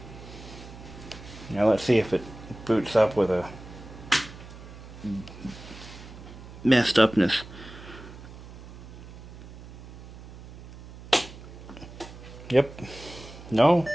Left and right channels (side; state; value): right; noise; hum, 16 dB below the sound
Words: Now let's see if it boots up with a messed upness. Yep. No.